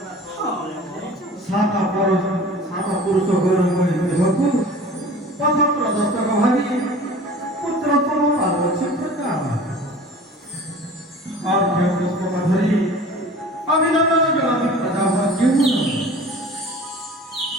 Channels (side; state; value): both; normal; correlation 0.42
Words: সাতা পুরুষ গৌরব দেহକୁ পথ প্রদর্শକ ভাবি পুত্রতম পাର୍ବতী প্রকার অর্ঘ্য পুষ্পক ধরি অভিনন্দন জনাবি প্রজাপতি